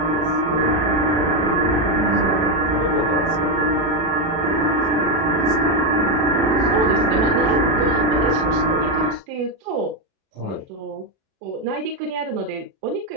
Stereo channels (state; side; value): late; left; 36 ms